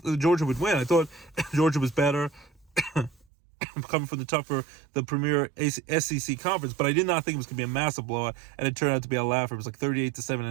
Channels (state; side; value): drops out; left; at 3.2 s